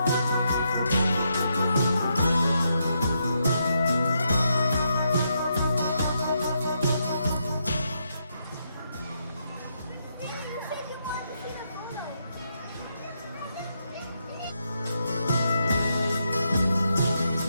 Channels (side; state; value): both; inverted; correlation -0.80